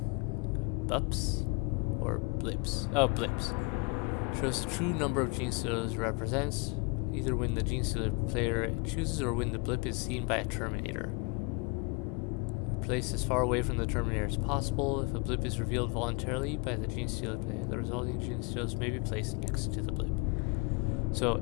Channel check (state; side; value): quieter; right; 30.0 dB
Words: bups or blips. Oh, blips. Shows the true number of Gene Stealers represents. either when the Genestealer player chooses or when the blip is seen by a Terminator. Placed as far away from the Terminator as possible. If a blip is revealed voluntarily by the Genestealer player, the resulting Genestealers may be placed next to the blip. So